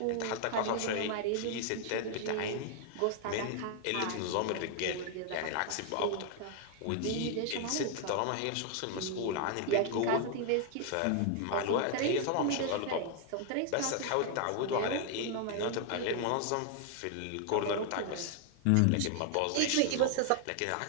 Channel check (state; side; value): different; both; correlation 0.00